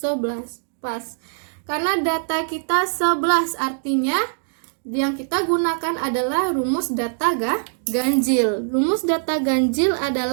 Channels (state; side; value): silent; left; digital silence